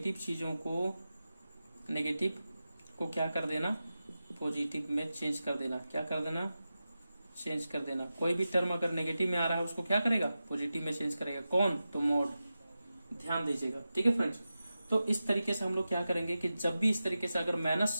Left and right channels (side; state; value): both; inverted; correlation -0.93